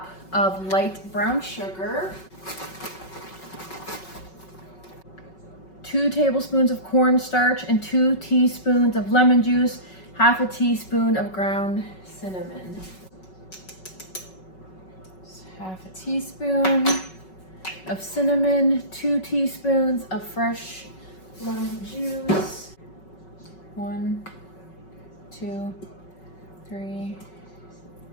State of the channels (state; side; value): late; right; 5.3 ms